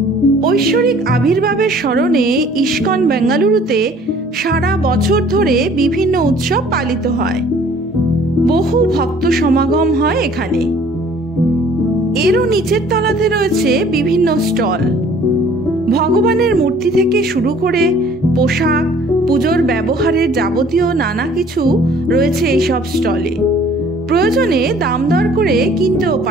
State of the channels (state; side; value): normal; both; correlation 0.54